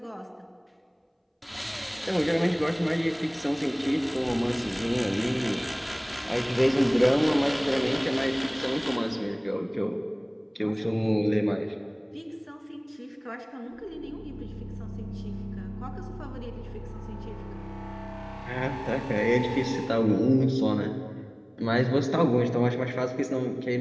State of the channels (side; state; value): both; identical; correlation 1.00